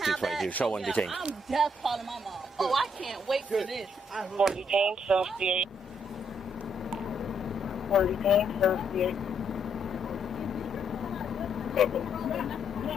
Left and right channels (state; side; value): normal; both; correlation 0.73